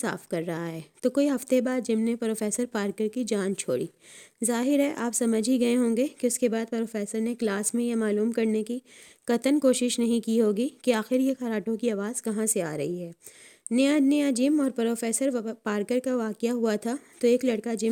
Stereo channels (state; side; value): identical; both; correlation 1.00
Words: کر رہا ہے۔ تو کوئی ہفتے بعد جم نے پروفیسر پارکر کی جان چھوڑی۔ ظاہر ہے آپ سمجھ ہی گئے ہوں گے کہ اس کے بعد پروفیسر نے کلاس میں یہ معلوم کرنے کی قطعاً کوشش نہیں کی ہوگی کہ آخر یہ خراٹوں کی آواز کہاں سے آ رہی ہے۔ نیا جم اور پروفیسر پارکر کا واقعہ ہوا تھا تو ایک لڑکا